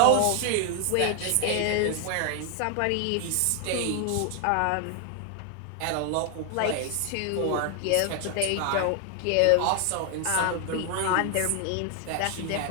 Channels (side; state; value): both; different; correlation 0.00